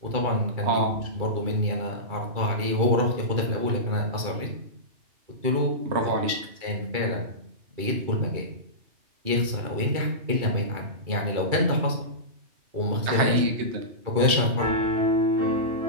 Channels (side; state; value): left; late; 2.3 ms